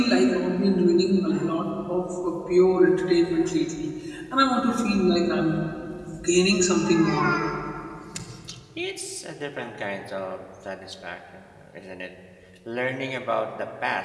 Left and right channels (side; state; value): both; identical; correlation 1.00